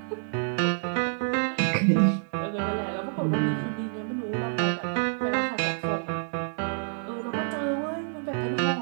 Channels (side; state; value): left; silent; digital silence